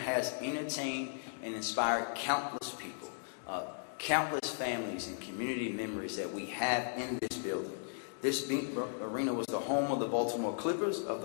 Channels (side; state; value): right; silent; digital silence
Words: has entertained and inspired countless people, countless families and community members that we have in this building. This arena was the home of the Baltimore Clippers, of